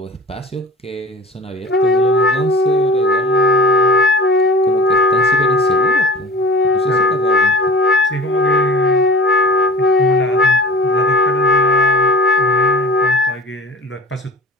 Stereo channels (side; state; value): both; normal; correlation 0.39